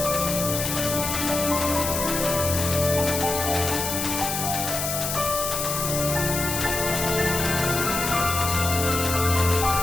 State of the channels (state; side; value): noise; left; hiss, 2 dB below the sound